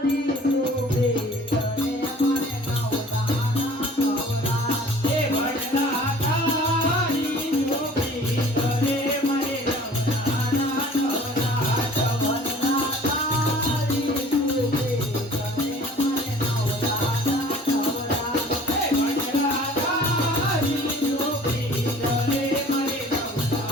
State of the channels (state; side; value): normal; both; correlation 0.49